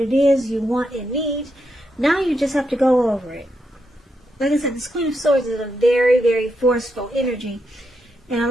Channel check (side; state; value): both; normal; correlation 0.82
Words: is you want and need. Now you just have to go over it. Like I said, this Queen of Swords is a very, very forceful energy. And a